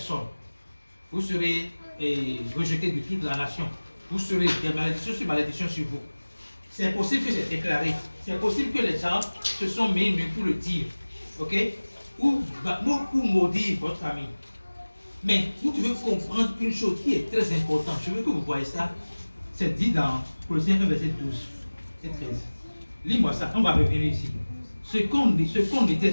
Vous serez rejeté de toute la nation. Vous serez des malédictions sur malédictions sur vous. C'est possible que c'est déclaré. C'est possible que les gens se sont mis nus pour le dire. Ok? Ou maudire votre famille. Mais vous devez comprendre une chose qui est très importante. Je veux que vous voyez ça. C'est dit dans Colossiens 1, verset 12 et 13. Lis-moi ça. On va revenir ici. Ce qu'on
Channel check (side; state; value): both; inverted; correlation -1.00